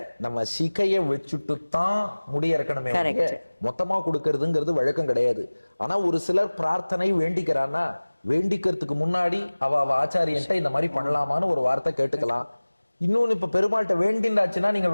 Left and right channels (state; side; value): inverted; both; correlation -1.00